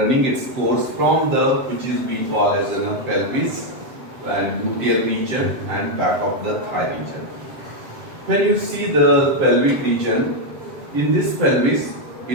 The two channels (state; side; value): late; left; 7.6 ms